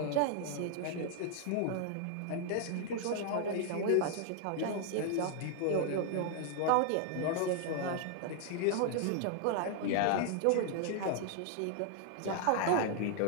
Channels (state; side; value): different; both; correlation 0.00